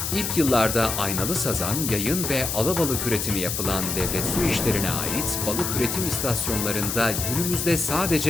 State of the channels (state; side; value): noise; left; hiss, 2 dB below the sound